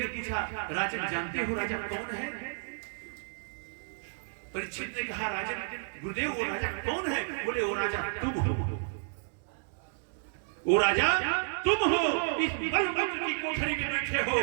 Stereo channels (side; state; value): left; silent; digital silence